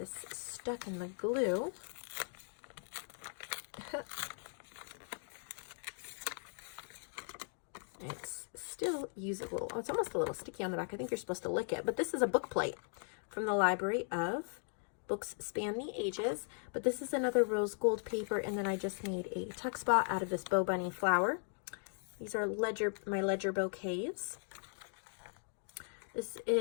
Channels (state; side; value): silent; right; 52 dB below the other